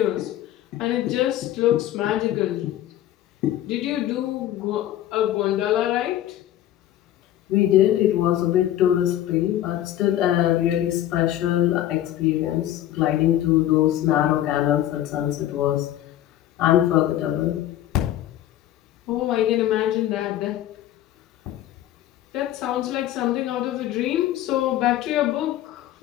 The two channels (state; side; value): quieter; right; 12.8 dB